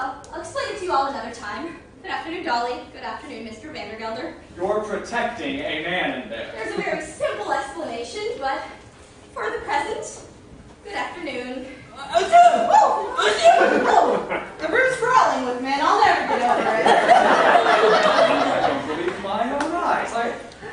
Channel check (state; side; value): identical; both; correlation 1.00